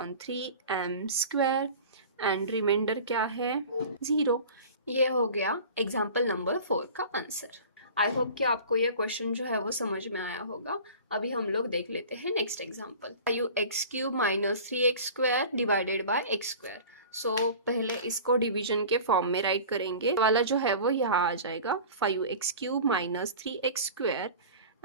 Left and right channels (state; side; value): inverted; both; correlation -0.40